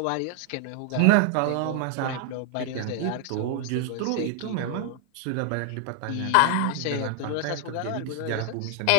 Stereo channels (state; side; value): different; both; correlation 0.00